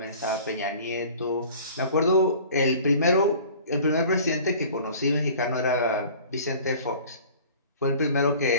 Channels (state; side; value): inverted; both; correlation -0.46